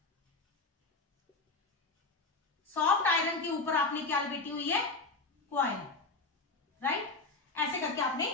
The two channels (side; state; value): right; quieter; 3.6 dB